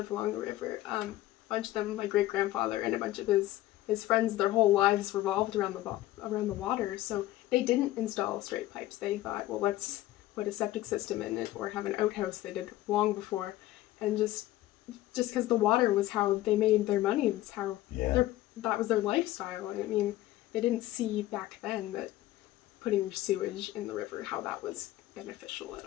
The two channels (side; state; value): right; quieter; 15.6 dB